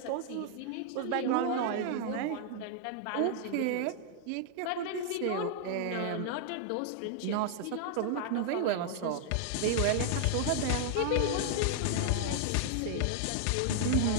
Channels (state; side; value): different; both; correlation 0.00